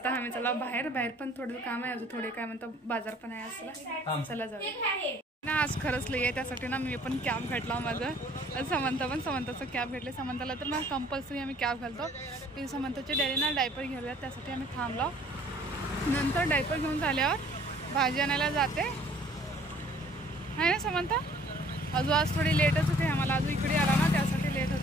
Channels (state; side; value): normal; both; correlation 0.56